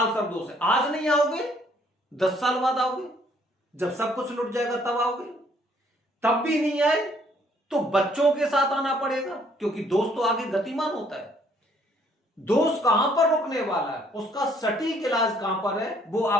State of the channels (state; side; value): normal; both; correlation 0.64